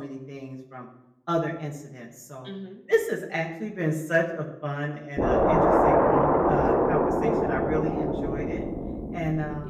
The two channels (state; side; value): identical; both; correlation 1.00